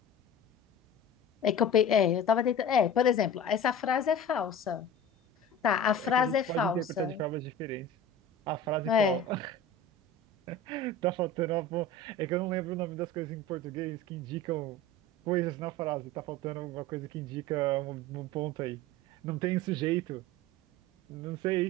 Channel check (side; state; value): both; normal; correlation 0.36